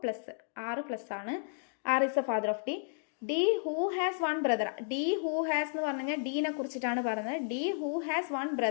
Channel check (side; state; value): right; silent; digital silence